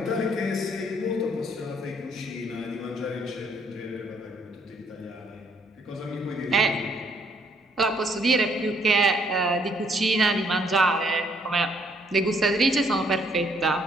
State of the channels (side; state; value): both; normal; correlation 0.67